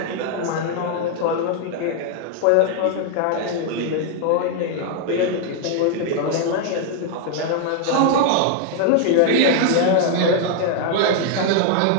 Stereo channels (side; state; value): both; different; correlation 0.00